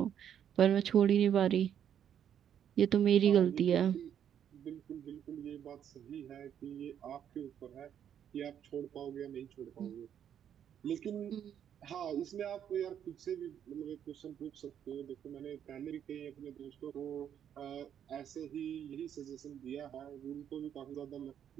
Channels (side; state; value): left; quieter; 9.3 dB